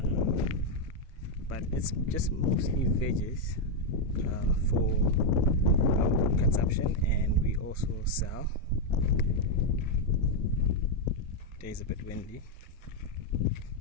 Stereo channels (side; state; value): both; normal; correlation 0.01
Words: but it's just mostly veggies for our own consumption, and we also sell. Today's a bit windy.